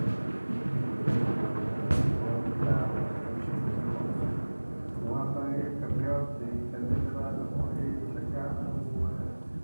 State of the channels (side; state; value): both; inverted; correlation -1.00